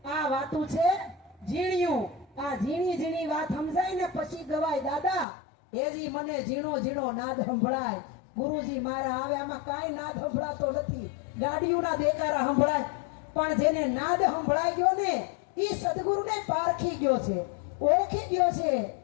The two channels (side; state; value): right; drops out; at 5.2 s